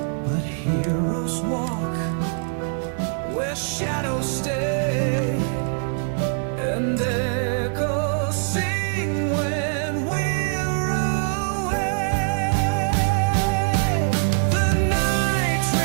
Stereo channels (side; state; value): left; silent; digital silence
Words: But heroes walk where shadows stay, and echoes sing when we're away. The night